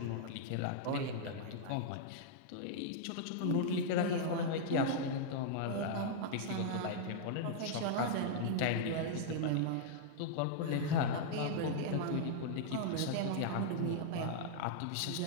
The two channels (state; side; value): different; both; correlation -0.01